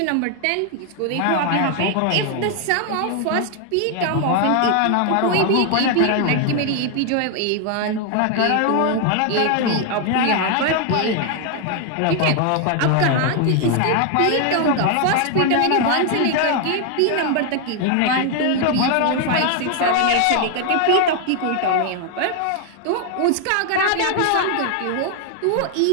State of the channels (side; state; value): both; different; correlation 0.00